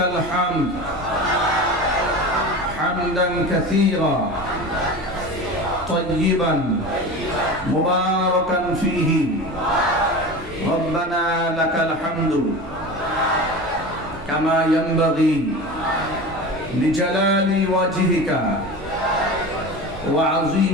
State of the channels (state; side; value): normal; both; correlation 0.31